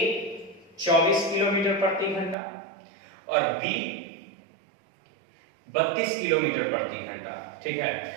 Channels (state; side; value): drops out; left; at 2.4 s